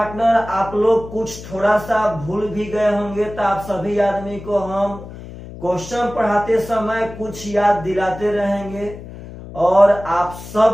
आप लोग कुछ थोड़ा सा भूल भी गए होंगे तो आप सभी आदमी को हम क्वेश्चन पढ़ाते समय कुछ याद दिलाते रहेंगे और आप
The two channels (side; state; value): left; noise; hum, 14 dB below the sound